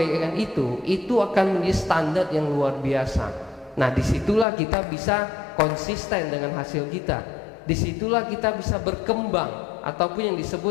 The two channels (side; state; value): right; drops out; at 4.5 s